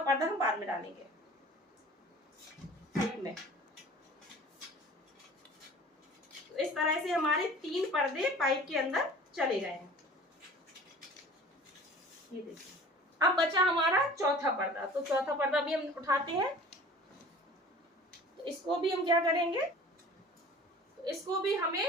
हम बाद में डालेंगे में। तो इस तरह से हमारे तीन पर्दे पाइप के अंदर चले गए हैं, ये देखिए। अब बचा हमारा चौथा पर्दा, तो चौथा पर्दा भी हम उठाते हैं। तो इसको भी हम क्या करेंगे, तो इसको भी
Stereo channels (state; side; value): normal; both; correlation 0.44